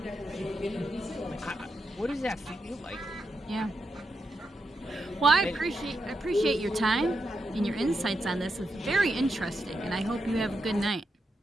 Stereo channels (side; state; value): both; normal; correlation 0.85